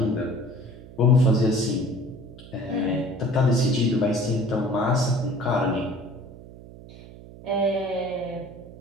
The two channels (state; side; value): noise; right; hum, 18 dB below the sound